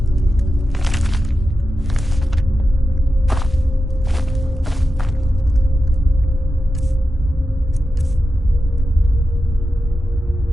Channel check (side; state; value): both; normal; correlation 0.91